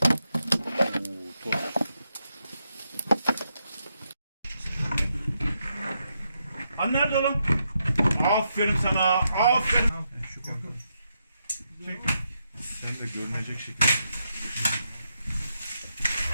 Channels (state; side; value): inverted; both; correlation -0.82